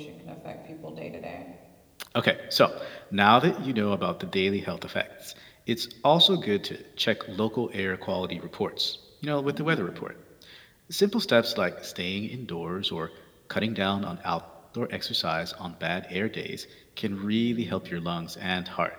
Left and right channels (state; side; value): identical; both; correlation 1.00